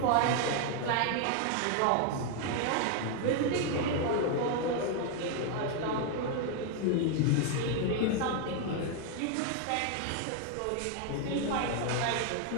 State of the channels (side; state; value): both; different; correlation 0.01